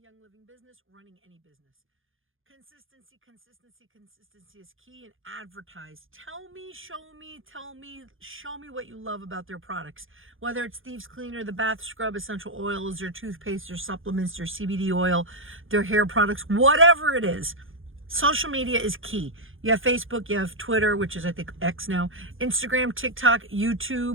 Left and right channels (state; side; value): late; left; 0.59 ms